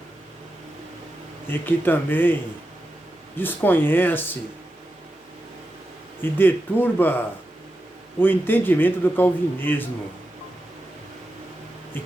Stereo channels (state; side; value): normal; both; correlation 0.89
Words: e que também desconhece e deturba o entendimento do calvinismo, e